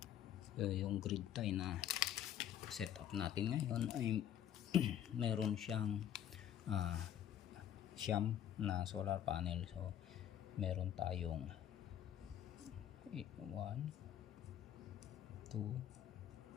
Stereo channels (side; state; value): right; quieter; 10.4 dB